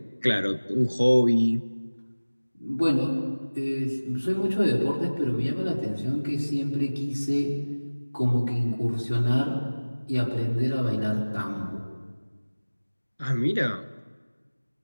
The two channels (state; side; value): inverted; both; correlation -1.00